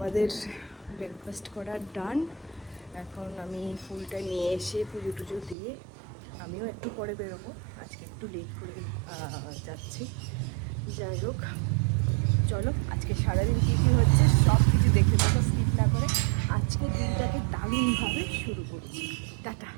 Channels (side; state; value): left; drops out; at 5.6 s